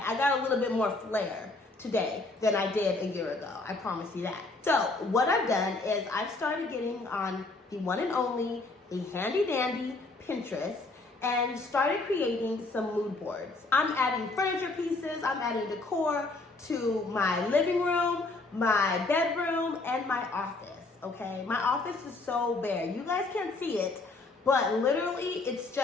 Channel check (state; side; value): quieter; right; 3.3 dB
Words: I got a little bit more flair today than I did a year ago. I promise you that. So what I've done is I've started getting on the one and only, the handy dandy Pinterest, and started creating some mood boards. I'm adding furniture pieces, I'm adding decor to my living room, my bedroom, and my office, okay? My office is so bare. You guys can't see it, but literally it's